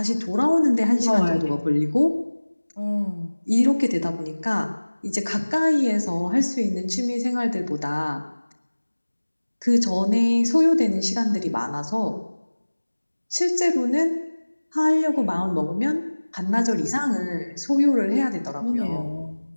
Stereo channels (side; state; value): both; inverted; correlation -1.00